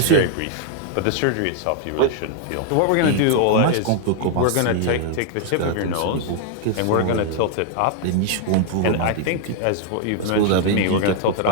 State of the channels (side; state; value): both; different; correlation 0.00